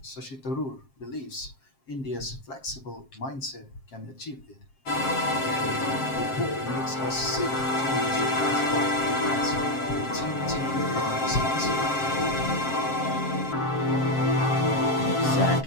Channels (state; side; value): late; right; 7.5 ms